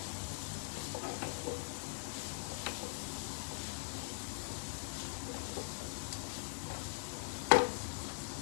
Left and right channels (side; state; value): right; silent; digital silence